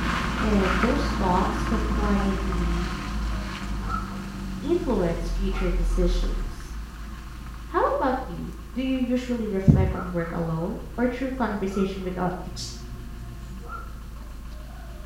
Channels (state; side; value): identical; both; correlation 1.00